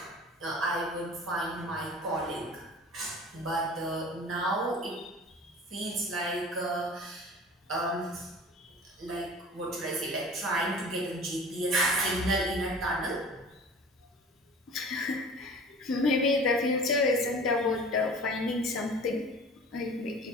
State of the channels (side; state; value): both; normal; correlation 0.42